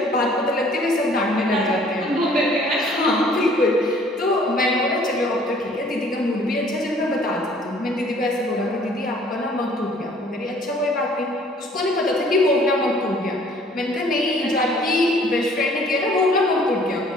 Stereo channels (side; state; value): both; normal; correlation 0.56